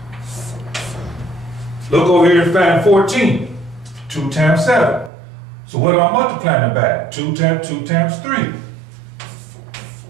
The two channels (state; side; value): drops out; left; at 5.1 s